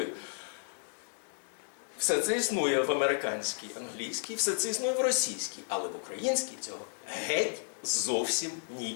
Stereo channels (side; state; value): right; silent; digital silence